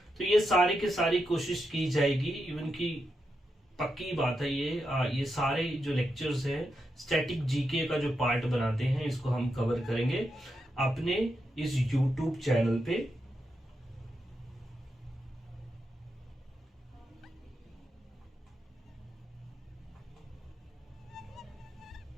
तो ये सारी की सारी कोशिश की जाएगी। इवन की पक्की बात है, ये सारे जो लेक्चर्स हैं स्टैटिक जीके का जो पार्ट बनाते हैं, इसको हम कवर करेंगे अपने इस यूट्यूब चैनल पे।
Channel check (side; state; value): both; normal; correlation 0.85